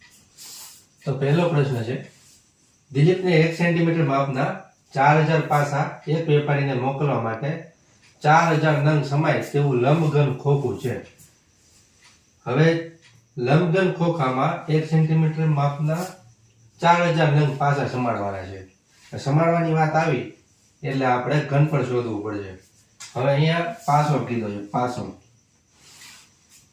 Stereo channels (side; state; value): both; identical; correlation 1.00